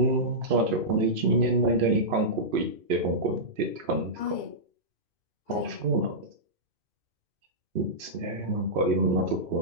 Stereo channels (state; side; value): late; left; 2.5 ms